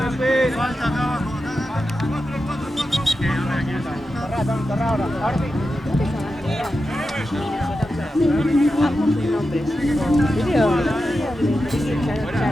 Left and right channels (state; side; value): normal; both; correlation 0.90